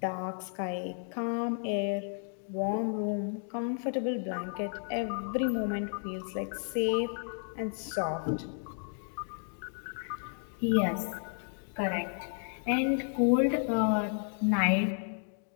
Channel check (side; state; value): right; silent; 56 dB below the other